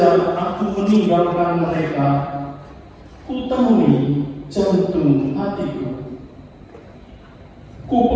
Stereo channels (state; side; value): identical; both; correlation 1.00